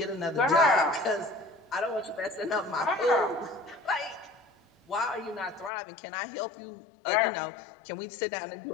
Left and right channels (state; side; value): drops out; right; at 5.7 s